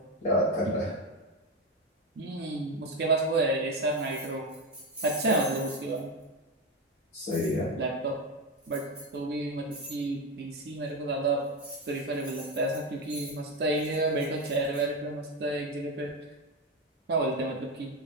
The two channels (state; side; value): normal; both; correlation 0.14